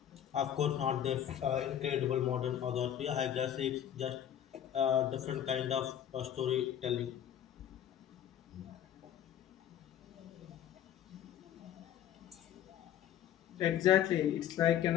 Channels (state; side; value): quieter; right; 10.5 dB